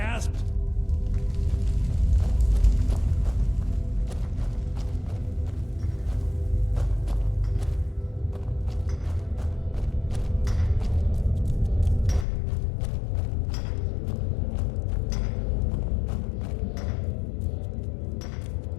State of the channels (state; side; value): drops out; right; at 12.2 s